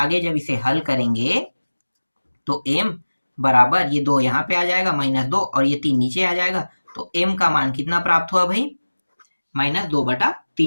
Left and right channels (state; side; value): inverted; both; correlation -1.00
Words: जब इसे हल करेंगे तो M बराबर, ये 2 यहाँ पे आ जाएगा, -2, और ये 3 नीचे आ जाएगा, तो M का मान कितना प्राप्त हुआ भाई,